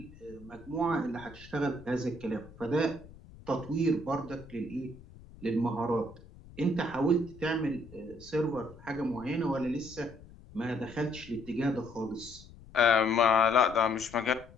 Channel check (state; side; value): noise; left; rumble, 20 dB below the sound